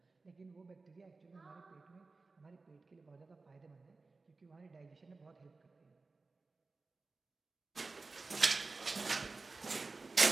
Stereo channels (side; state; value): left; quieter; 3.8 dB